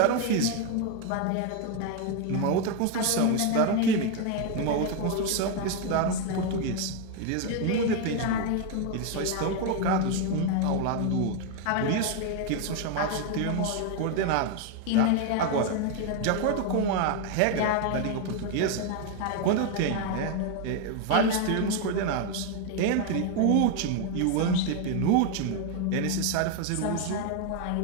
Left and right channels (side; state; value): both; different; correlation 0.01